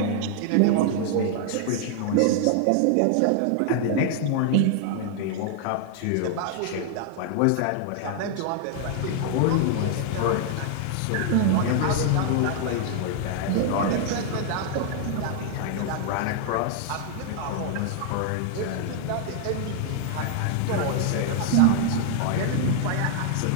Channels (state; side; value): different; both; correlation 0.00